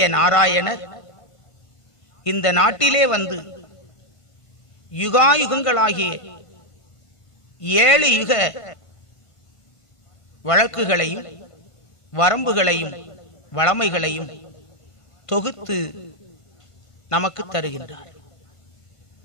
நாராயணர் இந்த நாட்டிலே வந்து யுகாயுகங்களாகிய 7 யுக வழக்குகளையும் வரம்புகளையும் வளமைகளையும் தொகுத்து நமக்கு தருகின்றார்.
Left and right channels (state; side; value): late; right; 1.5 ms